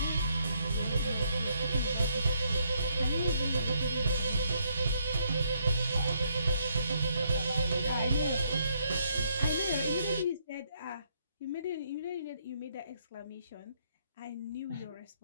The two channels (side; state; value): both; inverted; correlation -0.72